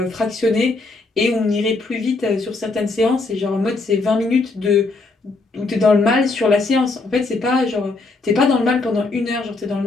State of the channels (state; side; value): quieter; right; 3.5 dB